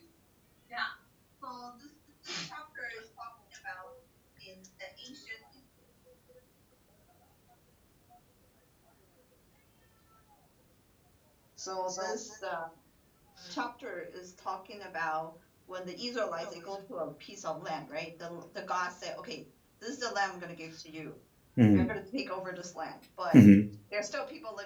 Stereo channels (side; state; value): both; identical; correlation 1.00